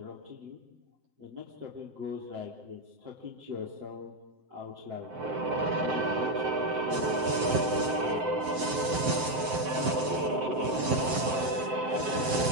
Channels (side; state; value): left; late; 7.8 ms